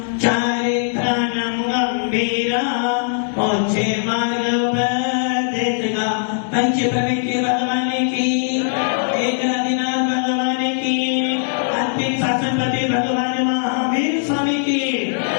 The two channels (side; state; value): right; silent; 58 dB below the other